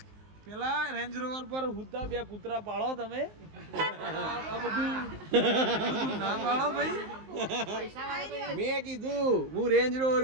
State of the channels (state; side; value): late; left; 19 ms